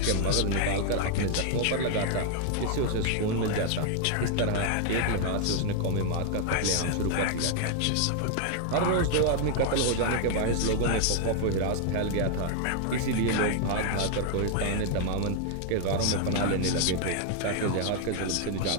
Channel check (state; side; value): different; both; correlation 0.00